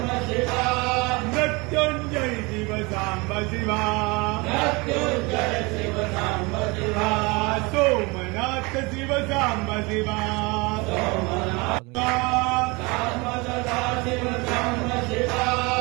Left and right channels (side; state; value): left; quieter; 26.2 dB